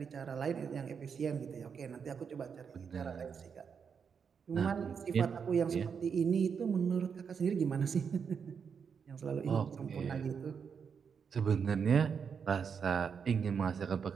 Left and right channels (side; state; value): left; quieter; 6.5 dB